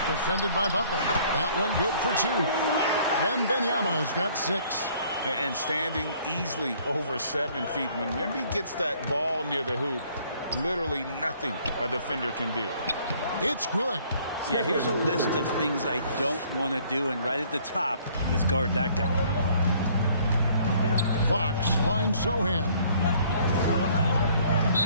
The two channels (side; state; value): both; inverted; correlation -0.59